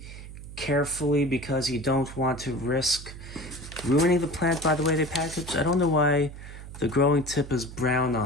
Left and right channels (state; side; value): noise; right; hum, 13 dB below the sound